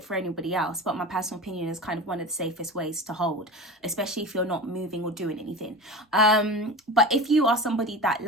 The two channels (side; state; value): both; normal; correlation 0.30